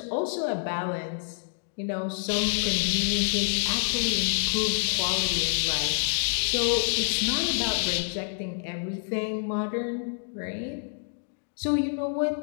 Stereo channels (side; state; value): right; silent; digital silence